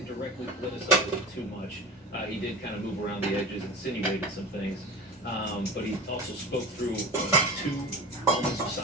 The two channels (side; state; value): both; normal; correlation 0.31